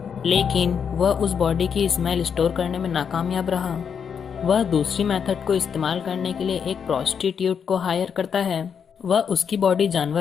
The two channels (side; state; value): right; quieter; 7.1 dB